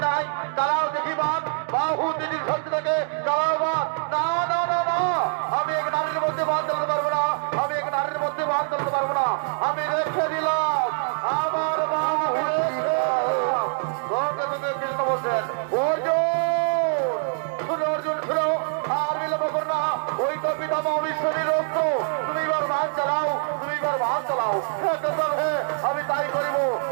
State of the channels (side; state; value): left; silent; digital silence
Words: নাই তারাও দেখি বাদ বাহু তিনি শক্তি থেকে তারাও বাদ না না না না আমি এক নারীর মধ্যে বাদ দিতে পারবো না আমি এক নারীর মধ্যে বাদ দিতে পারবো না আমি রেখে দিলাম আমার অবিশ্বাসী রক্ত তুমি এবার ভাগ চালাও, তুমি এবার ভাগ চালাও। হ্যাঁ কেশব, হ্যাঁ আমি তাই করিব,